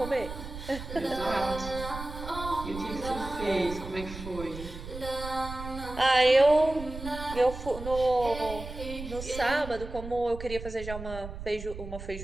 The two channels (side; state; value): right; noise; rumble, 10 dB below the sound